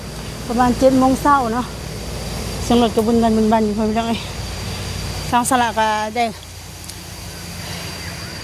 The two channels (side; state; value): both; identical; correlation 1.00